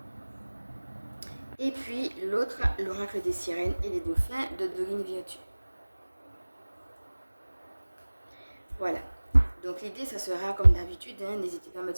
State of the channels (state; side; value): inverted; both; correlation -1.00